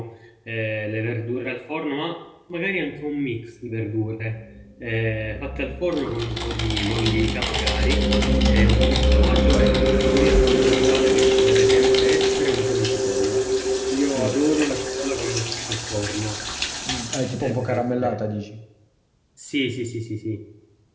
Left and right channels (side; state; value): both; identical; correlation 1.00